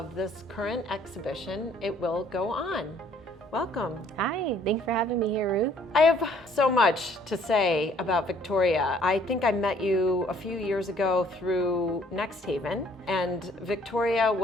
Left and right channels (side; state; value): both; normal; correlation 0.60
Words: this current exhibition, It Will Go On. Welcome. Hi, thanks for having me here, Ruth. I have so much to say about Victoria. I think I met you a few years ago through Next Haven, and Victoria